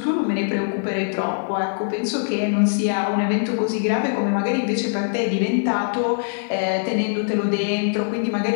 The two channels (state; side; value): silent; right; digital silence